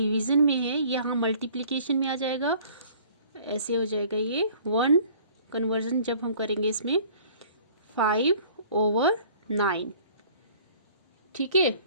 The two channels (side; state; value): both; inverted; correlation -0.53